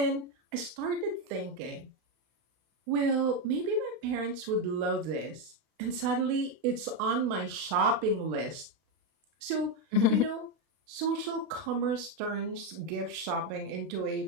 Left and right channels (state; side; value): late; left; 32 ms